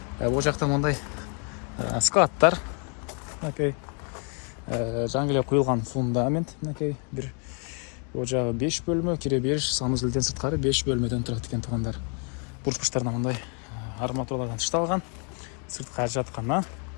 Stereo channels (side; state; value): right; quieter; 38.9 dB